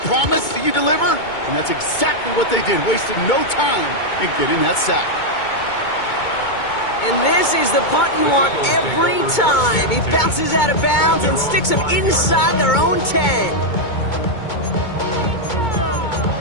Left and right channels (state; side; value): late; right; 2.2 ms